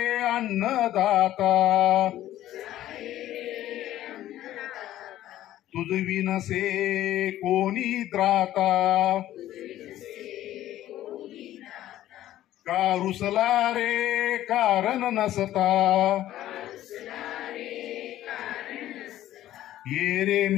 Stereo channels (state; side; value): quieter; right; 13.5 dB